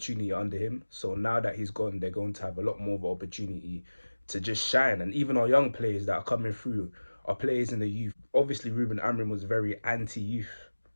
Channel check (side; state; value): both; inverted; correlation -1.00